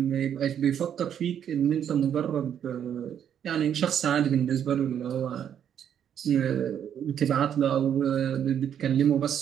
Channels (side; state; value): left; quieter; 9.1 dB